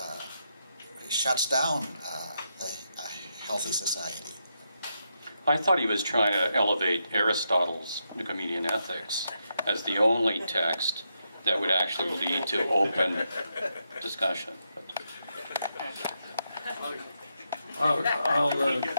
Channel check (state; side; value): inverted; both; correlation -0.82